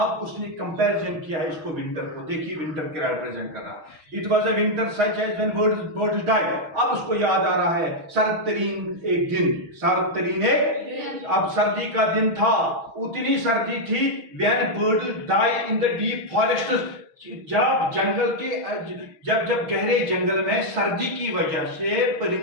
उसने कंपैरिजन किया है इसको विंटर को। देखिए विंटर क्या रिप्रेजेंट कर रहा है। It was a winter such as when birds died. अब उसको याद आ रहा है सर्द तरीन एक दिन, सर्द तरीन एक, अब सर्दी का दिन था, उतनी सर्दी थी when birds die in the deep forest, जब जंगल के जब गहरे जंगल में सर्दी की वजह से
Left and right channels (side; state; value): left; late; 6.2 ms